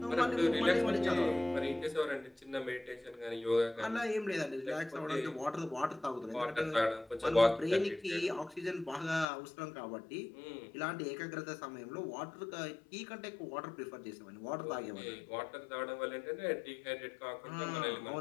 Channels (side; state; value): right; drops out; at 9.2 s